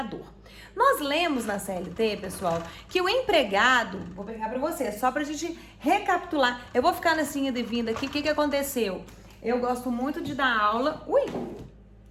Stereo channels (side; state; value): both; identical; correlation 1.00